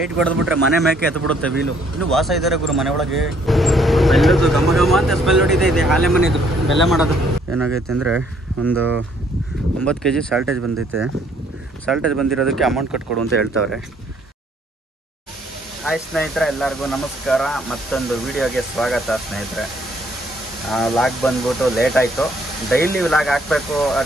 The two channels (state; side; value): normal; both; correlation 0.65